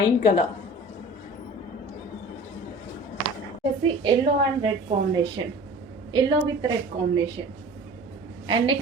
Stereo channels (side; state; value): both; normal; correlation 0.41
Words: colour వచ్చేసి yellow and red combination, yellow with red combination. And